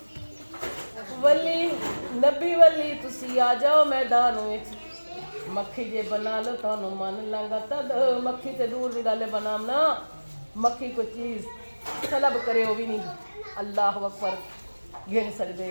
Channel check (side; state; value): both; inverted; correlation -1.00